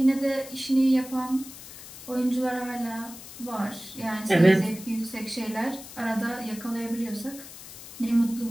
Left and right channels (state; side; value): noise; left; hiss, 15 dB below the sound